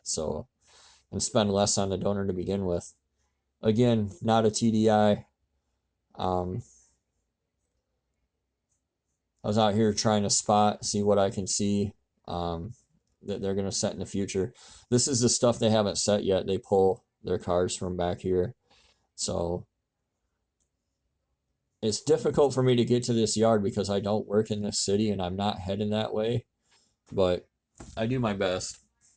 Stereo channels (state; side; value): identical; both; correlation 1.00